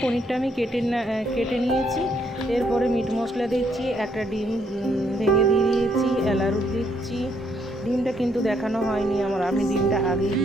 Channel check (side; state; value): both; normal; correlation 0.72